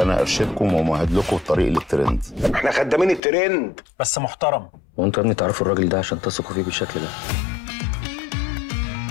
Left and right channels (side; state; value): right; drops out; at 3.2 s